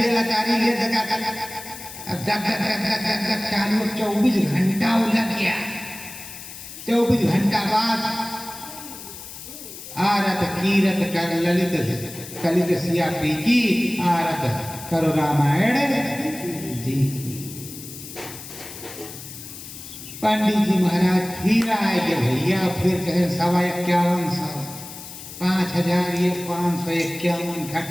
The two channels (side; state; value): left; noise; hiss, 13 dB below the sound